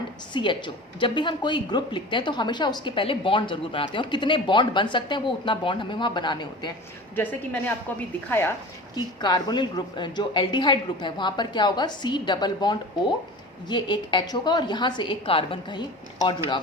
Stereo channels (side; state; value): both; normal; correlation 0.36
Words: CHO, जब भी हम कोई ग्रुप लिखते हैं तो हमेशा उसके पहले बॉन्ड जरूर बनाते हैं, और कितने बॉन्ड बन सकते हैं वो उतना बॉन्ड हमें वहाँ बनाने होते हैं। जैसे कि मैंने आपको अभी दिखाया कि कार्बोनिल ग्रुप जो एल्डिहाइड ग्रुप है वहाँ पर क्या होगा, C डबल बॉन्ड O, ये एक H होगा और यहाँ से एक कार्बन कहीं और जुड़ा